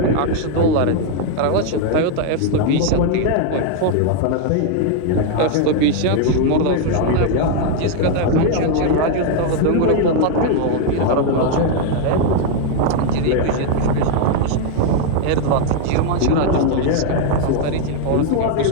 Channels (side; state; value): both; different; correlation 0.00